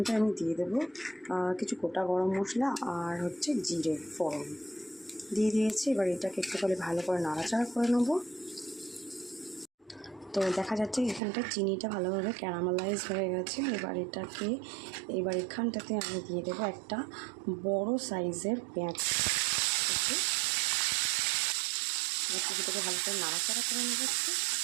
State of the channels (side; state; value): left; drops out; at 11.2 s